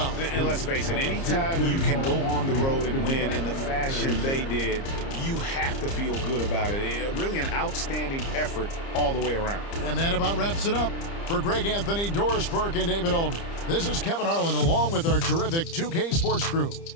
And let's face it, anytime you can go on the road and win in the fashion they did, you have to feel good about it. Really an outstanding effort all the way around. And that about wraps it up. For Greg Anthony, Doris Burke, and David Aldridge, this is Kevin Harlan along with our terrific 2K Sports crew,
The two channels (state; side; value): late; right; 30 ms